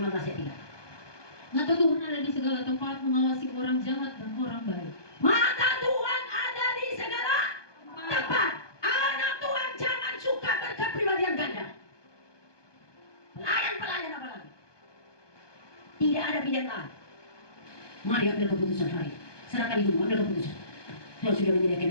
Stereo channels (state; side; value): late; right; 1.2 ms